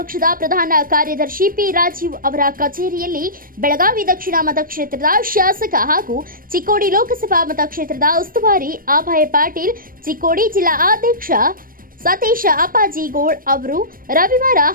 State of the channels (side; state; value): left; late; 0.41 ms